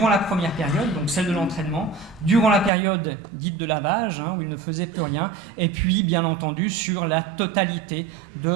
la première période, donc celle de l'entraînement, durant la période dite de lavage, où il ne faisait plus rien, et puis bien entendu sur la totalité de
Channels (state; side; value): drops out; left; at 2.7 s